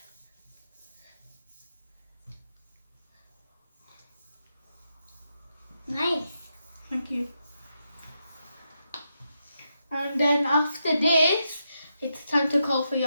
Nice. Thank you. And then after this, it's time to call for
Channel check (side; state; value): both; inverted; correlation -0.84